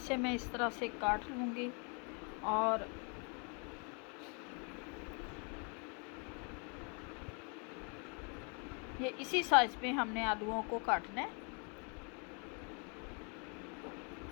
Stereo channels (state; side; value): quieter; right; 36.0 dB